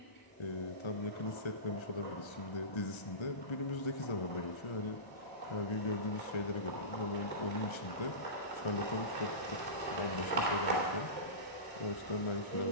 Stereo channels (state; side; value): late; right; 1.3 ms